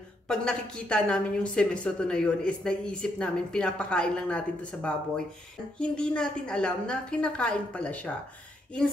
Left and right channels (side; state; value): both; normal; correlation 0.76